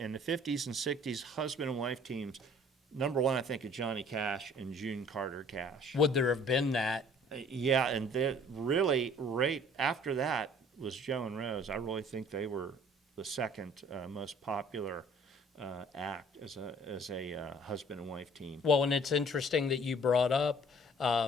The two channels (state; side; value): normal; both; correlation 0.54